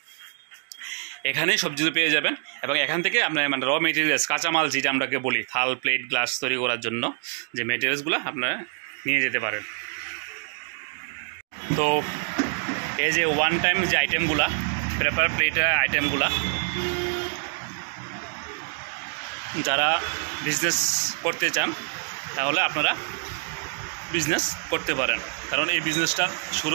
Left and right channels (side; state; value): left; silent; 61 dB below the other